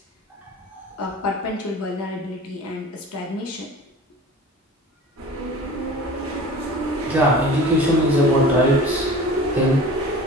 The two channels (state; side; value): normal; both; correlation 0.40